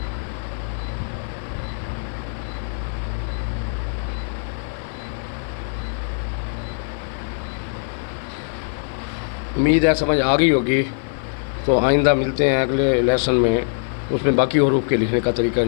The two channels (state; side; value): silent; right; 55 dB below the other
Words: امید ہے سمجھ آ گئی ہوگی۔ تو آئندہ ملتے ہیں اگلے لیسن میں، اس میں باقی حروف کے لکھنے کا طریقہ